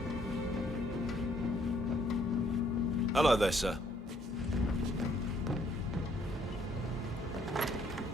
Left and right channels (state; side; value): normal; both; correlation 0.66